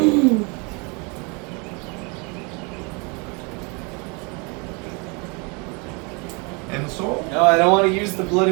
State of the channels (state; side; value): quieter; left; 31.0 dB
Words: And the soul? No, I don't want to use the